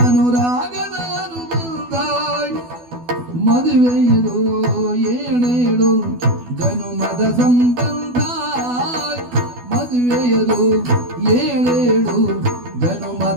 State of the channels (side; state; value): left; late; 12 ms